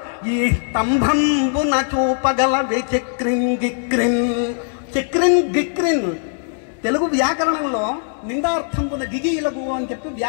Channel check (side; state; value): right; silent; digital silence